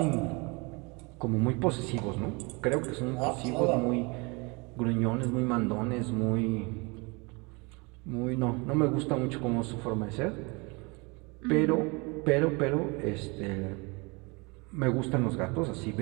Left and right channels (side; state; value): left; quieter; 28.4 dB